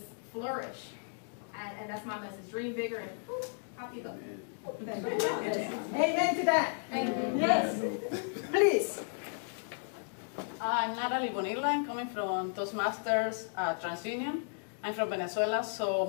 flourish. And that's my message. Dream bigger and poof, happy go. Amen to that. Yes. Please. I'm Natalie Bonilla. I'm coming from Toastmasters TransUnion. I'm from Venezuela, so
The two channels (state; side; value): silent; right; digital silence